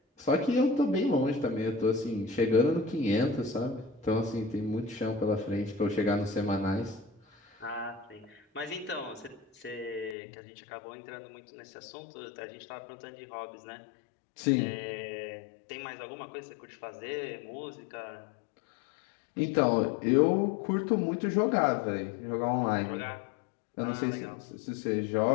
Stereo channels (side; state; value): right; drops out; at 10.2 s